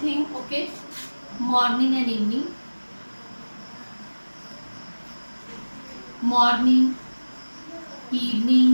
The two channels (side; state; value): both; inverted; correlation -1.00